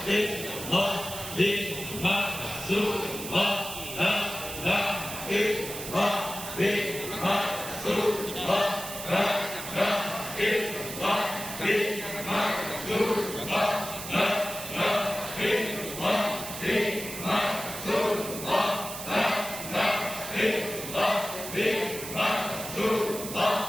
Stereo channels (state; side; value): noise; right; hiss, 9 dB below the sound